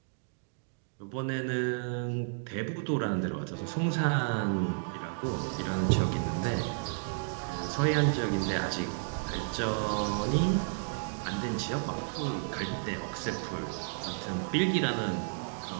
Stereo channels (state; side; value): silent; left; digital silence